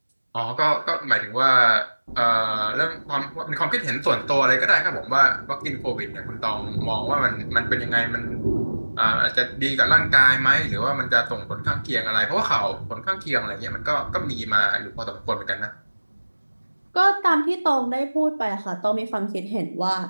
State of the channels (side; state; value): both; inverted; correlation -1.00